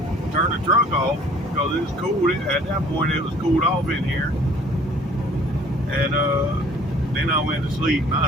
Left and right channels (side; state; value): both; normal; correlation 0.54